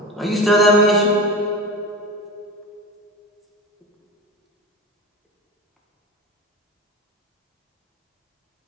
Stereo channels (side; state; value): both; normal; correlation 0.28